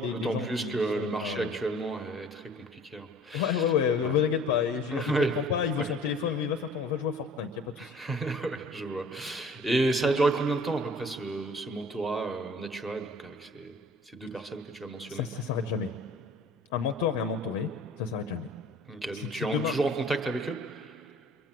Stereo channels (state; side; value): normal; both; correlation 0.50